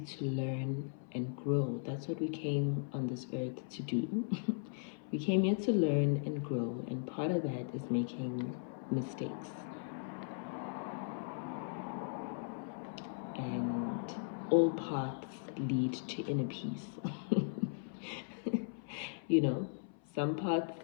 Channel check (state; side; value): silent; right; 53 dB below the other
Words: learn and grow. That's what we came on this earth to do. We came here to learn and grow, and part of that is making mistakes. And all paths lead to inner peace. Some paths